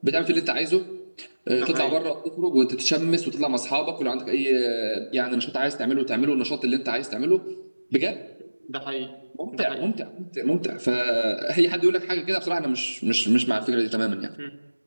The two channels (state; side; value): inverted; both; correlation -1.00